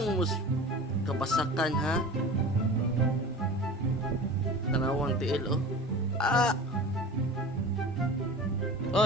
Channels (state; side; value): normal; both; correlation 0.36